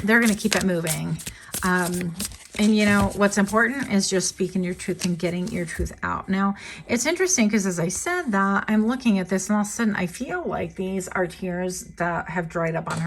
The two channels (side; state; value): both; identical; correlation 1.00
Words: going to keep it moving. And you know, what's important is just speaking your truth and getting your truth out. Now, it's interesting because as I said that, I'm looking at this and all of a sudden I feel like these are tears that have dried up on